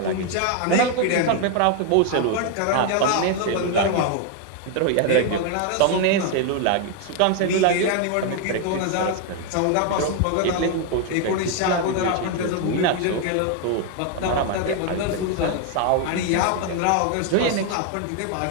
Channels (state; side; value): different; both; correlation 0.01